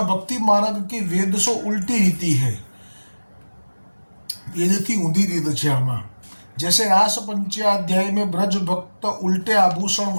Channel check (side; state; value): both; inverted; correlation -1.00